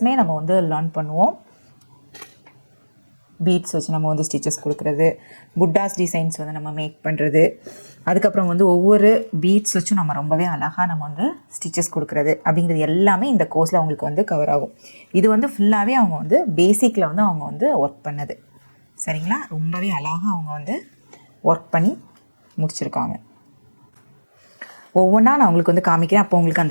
நம்ம வந்து லேர்ன் பண்ணுவோம். பீட்ஸ் வச்சு நம்ம வந்து ஸ்டிச்சஸ் கொடுக்குறது, புட்டாஸ் டிசைன்ஸ் வந்து நம்ம மேக் பண்ணுறது, அதுக்கப்புறம் வந்து ஒவ்வொரு பீட்ஸ் வச்சும் நம்ம ரொம்பவே அழகாக நம்ம வந்து ஸ்டிச்சஸ் கொடுக்குறது அப்படிங்கிறது எல்லாமே இந்த கோர்ஸில் அவங்களுக்கு வந்து கவர் ஆகும். இது வந்து ஃபுல்லாகவே அவங்க வந்து பேசிக்கில் வந்து அவங்க வந்து ஒர்க் பண்ணது சரிங்களா. ரொம்பவே அழகாக அவங்க வந்து ஒர்க் பண்ணி முடிச்சிருக்காங்க. ஒவ்வொன்றா நான் உங்களுக்கு வந்து காமிக்கிறேன். அப்போ உங்களுக்கு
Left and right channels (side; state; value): both; inverted; correlation -1.00